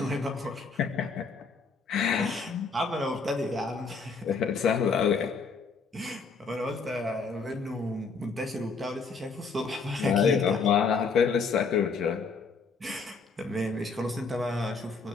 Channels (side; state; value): right; quieter; 4.8 dB